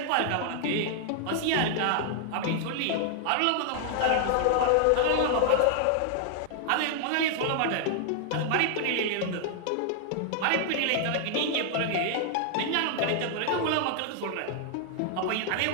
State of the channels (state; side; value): different; both; correlation 0.00